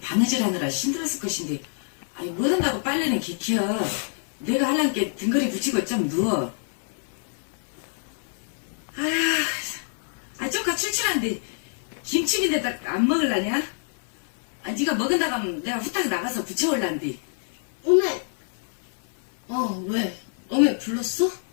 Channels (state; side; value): silent; right; digital silence